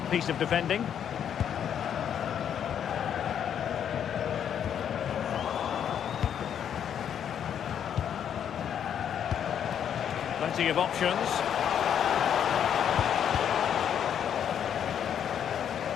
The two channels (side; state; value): right; quieter; 8.9 dB